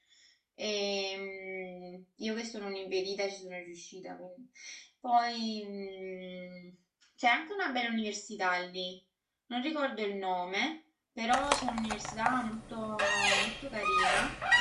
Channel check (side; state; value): both; identical; correlation 1.00